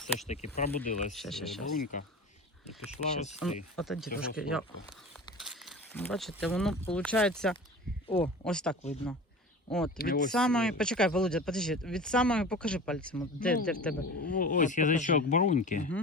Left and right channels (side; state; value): both; normal; correlation 0.35